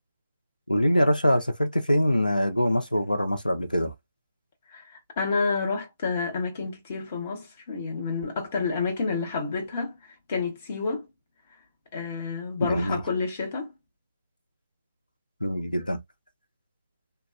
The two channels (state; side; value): inverted; both; correlation -0.86